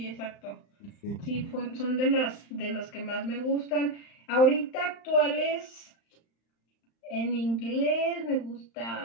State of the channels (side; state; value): right; late; 35 ms